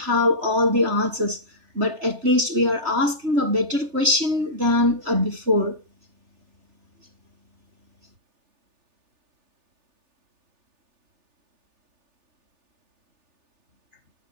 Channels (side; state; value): left; late; 3.4 ms